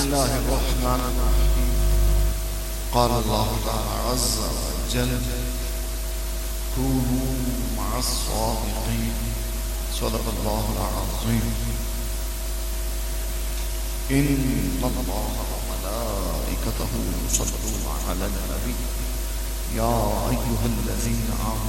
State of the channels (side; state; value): both; identical; correlation 1.00